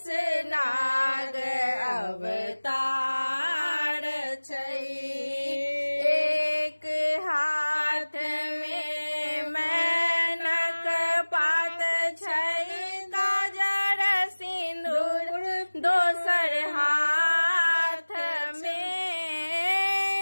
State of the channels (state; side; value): inverted; both; correlation -1.00